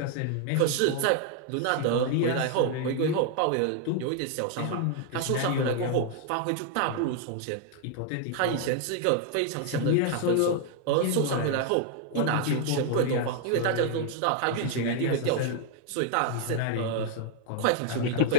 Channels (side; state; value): both; different; correlation 0.00